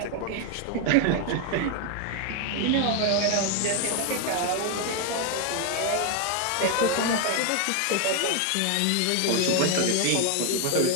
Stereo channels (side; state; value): both; different; correlation 0.01